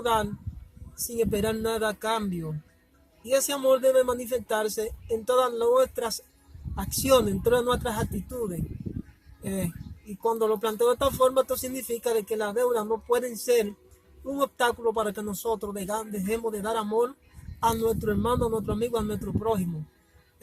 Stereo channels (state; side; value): identical; both; correlation 1.00